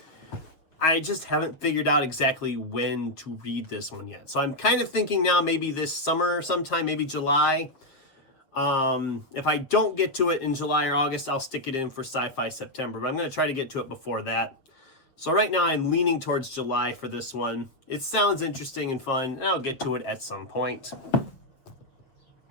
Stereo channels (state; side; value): late; right; 7.4 ms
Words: I just haven't figured out exactly when to read this one yet. So I'm kind of thinking now maybe this summer sometime, maybe July. If I don't get to it in July or August, I'll stick it in for Sci-Fi September, but I'm going to try to get to it before that. So right now I'm leaning towards July for this one. It sounds interesting and fun, and I'll get to it at some point.